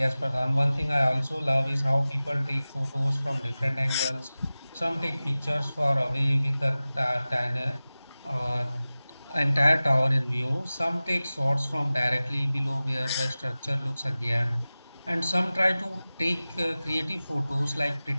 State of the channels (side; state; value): both; inverted; correlation -0.97